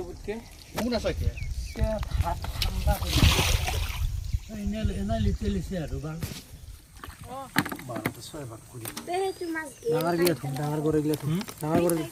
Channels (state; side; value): identical; both; correlation 1.00